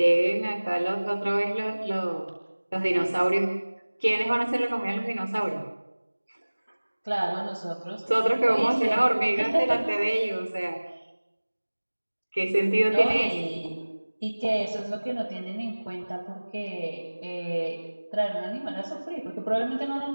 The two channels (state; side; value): inverted; both; correlation -1.00